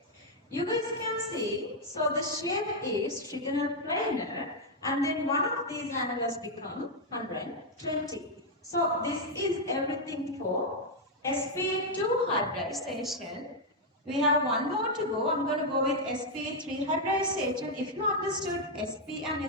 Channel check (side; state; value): both; normal; correlation -0.01